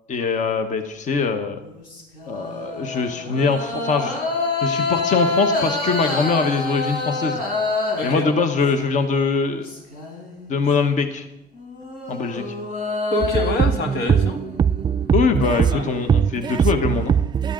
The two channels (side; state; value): both; normal; correlation 0.39